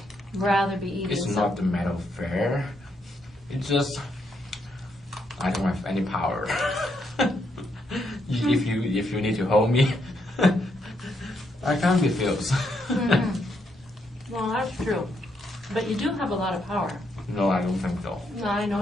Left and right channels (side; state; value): both; normal; correlation 0.77